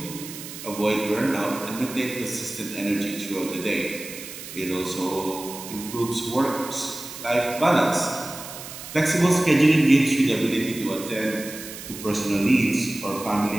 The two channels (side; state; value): right; noise; hiss, 12 dB below the sound